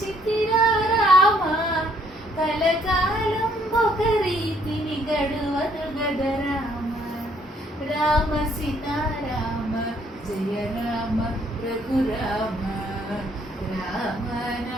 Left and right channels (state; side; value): normal; both; correlation 0.66